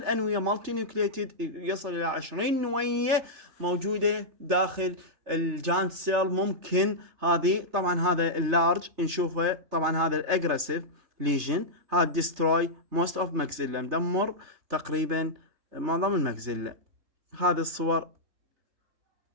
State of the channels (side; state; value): left; late; 3.3 ms